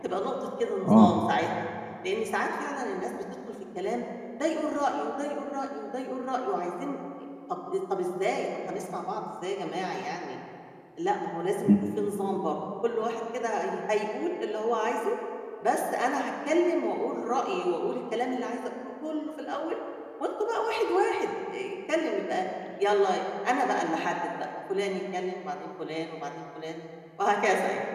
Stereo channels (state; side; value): identical; both; correlation 1.00